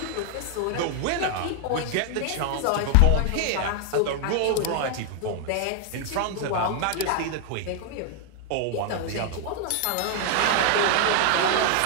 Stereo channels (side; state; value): both; different; correlation 0.00